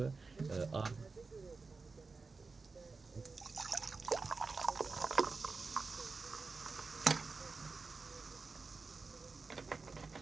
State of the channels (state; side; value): quieter; left; 4.2 dB